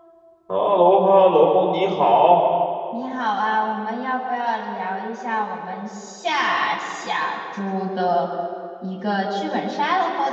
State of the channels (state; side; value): identical; both; correlation 1.00